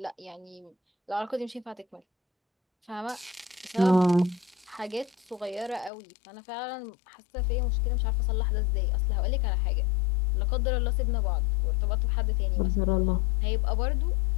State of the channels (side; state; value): right; drops out; at 5.9 s